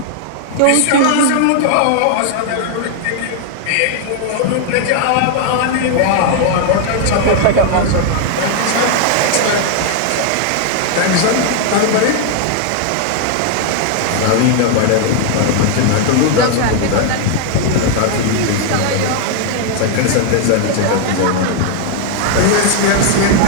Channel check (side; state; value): both; different; correlation 0.00